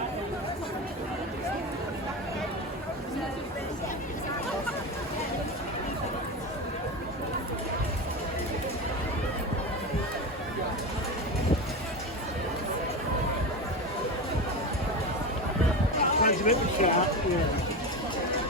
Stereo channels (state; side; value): normal; both; correlation 0.22